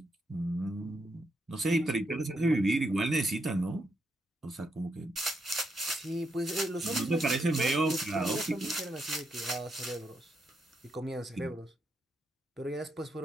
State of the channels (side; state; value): both; normal; correlation 0.80